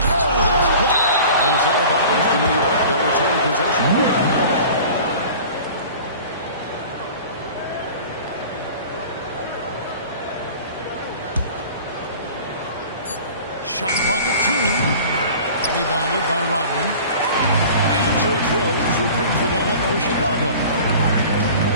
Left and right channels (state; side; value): inverted; both; correlation -0.42